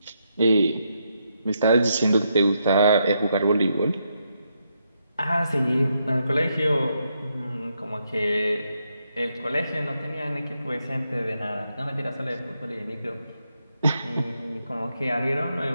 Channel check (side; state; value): both; inverted; correlation -0.80